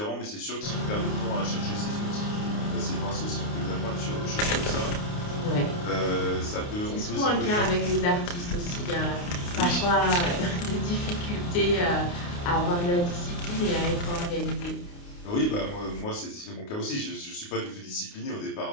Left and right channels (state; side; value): late; right; 29 ms